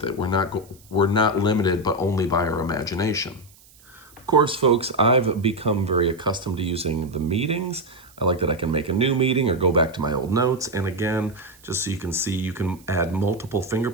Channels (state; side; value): noise; right; hiss, 26 dB below the sound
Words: it. We're not limited, but only by our imagination. Of course, folks, I've become very accustomed to using the meetings. I like that I can make a new meeting or go back to my old notes. And again, just so you can see, you can add multiple